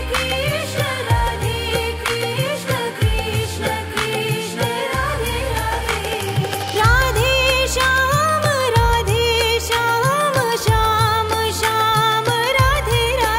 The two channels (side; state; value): both; identical; correlation 1.00